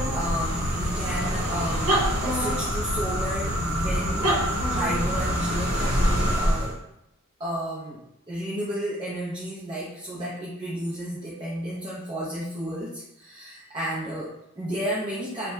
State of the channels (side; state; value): both; normal; correlation 0.60